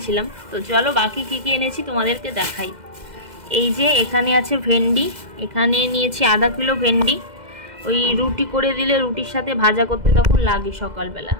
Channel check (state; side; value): late; left; 2.0 ms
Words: তো চলো বাকি কী কী এনেছি তোমাদেরকে দেখাই। এই যে এখানে আছে ভেন্ডি, এখানে নিয়েছি 1/2 কিলো ভেন্ডি। ওই রুটি করে দিলে রুটির সাথে ভাজা করতে তখন লাগে সকালবেলা,